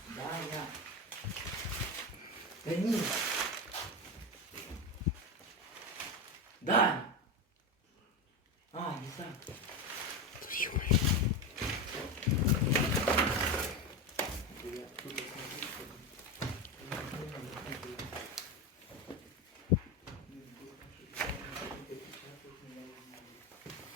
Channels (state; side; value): normal; both; correlation 0.18